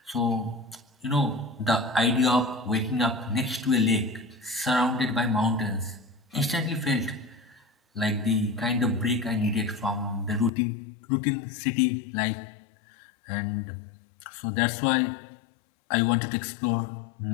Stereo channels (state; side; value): drops out; right; at 10.5 s